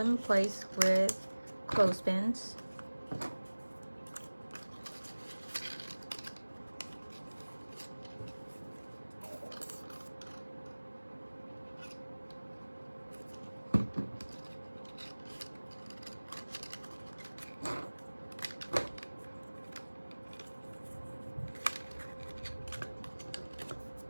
in place with clothespins.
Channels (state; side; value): inverted; both; correlation -1.00